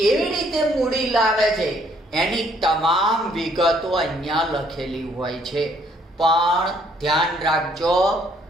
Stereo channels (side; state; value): both; normal; correlation 0.65